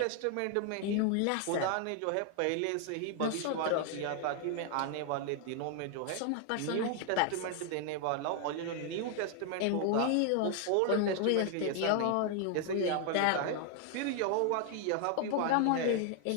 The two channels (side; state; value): both; different; correlation 0.00